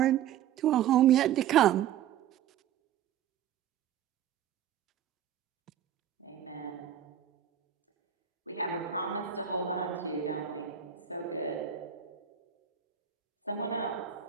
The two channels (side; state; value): left; quieter; 9.7 dB